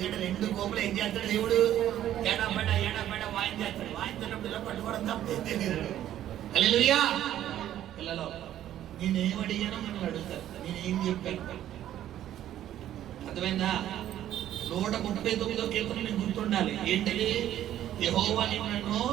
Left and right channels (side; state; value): left; quieter; 12.0 dB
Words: రెండు కోపులు ఏం చేస్తాడు దేవుడు? ఏడాపేట వాయించేస్తాడు. వాయించేటప్పుడు ఇలా పట్టుకోవడం తప్ప తెలియదు. హల్లెలూయా. పిల్లలు, నేనేం అడిగానో మిమ్మల్ని అడుగుతారు, నేనేం చెప్పాను అర్థమైందా? 139వ కీర్తన మీకు గుర్తుండాలి. ఏంటది? యెహోవా నిన్ను